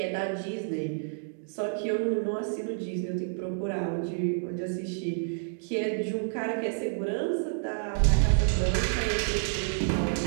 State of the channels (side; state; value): left; silent; digital silence